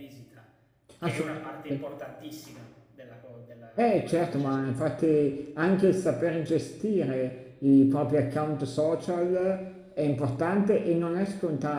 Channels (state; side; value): identical; both; correlation 1.00